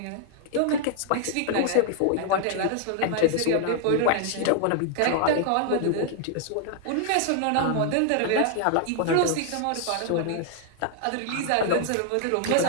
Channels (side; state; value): both; different; correlation 0.00